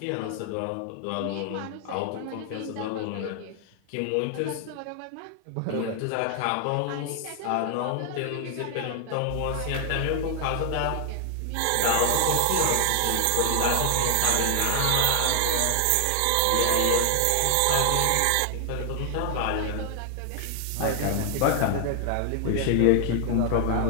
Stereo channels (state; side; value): different; both; correlation 0.00